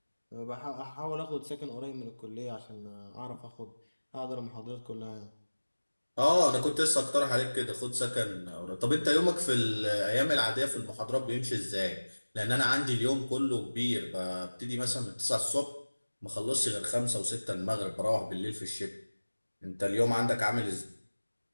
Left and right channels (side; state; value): both; inverted; correlation -1.00